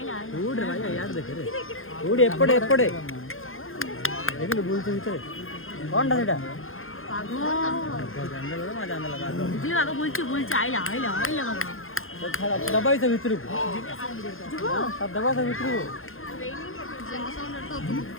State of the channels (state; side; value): late; right; 0.60 ms